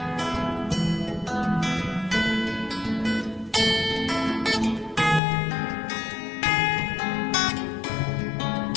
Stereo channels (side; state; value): right; drops out; at 5.2 s